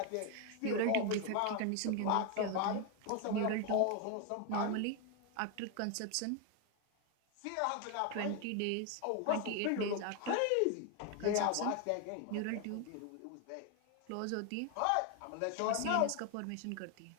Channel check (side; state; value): both; different; correlation 0.01